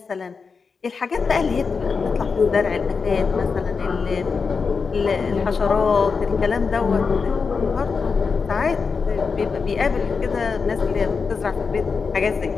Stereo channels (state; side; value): quieter; right; 5.1 dB